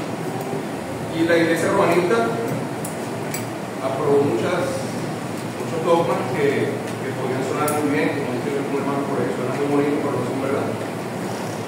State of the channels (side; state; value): both; identical; correlation 1.00